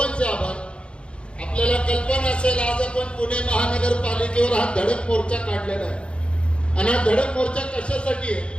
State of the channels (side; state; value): right; late; 0.057 ms